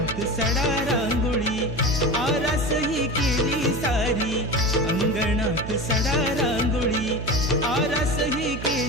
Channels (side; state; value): right; noise; hum, 8 dB below the sound